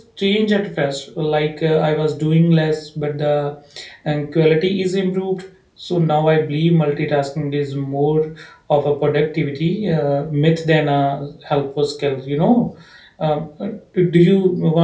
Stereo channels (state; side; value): identical; both; correlation 1.00